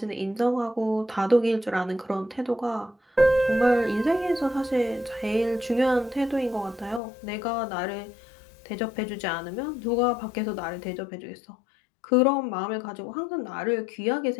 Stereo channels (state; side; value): drops out; right; at 7.0 s